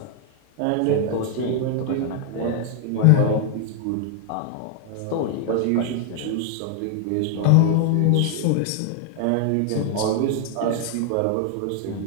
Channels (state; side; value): different; both; correlation 0.00